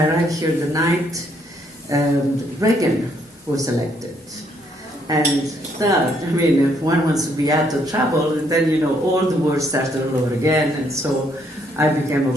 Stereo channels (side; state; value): both; normal; correlation 0.70